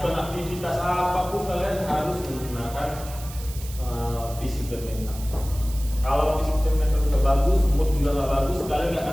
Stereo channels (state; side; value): noise; right; hiss, 15 dB below the sound